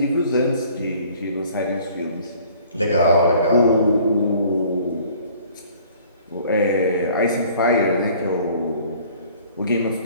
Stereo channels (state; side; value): inverted; both; correlation -0.53